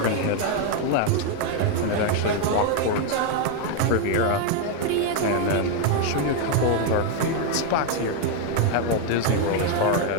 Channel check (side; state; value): both; different; correlation 0.01